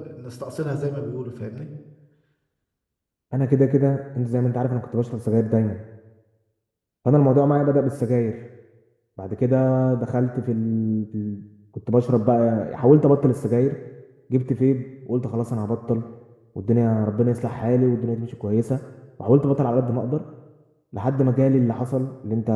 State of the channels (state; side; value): identical; both; correlation 1.00